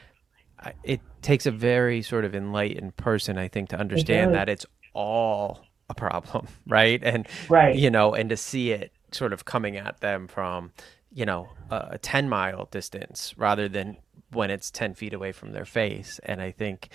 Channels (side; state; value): left; quieter; 6.1 dB